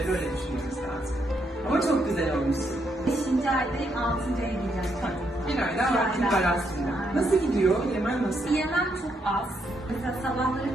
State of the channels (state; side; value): normal; both; correlation 0.77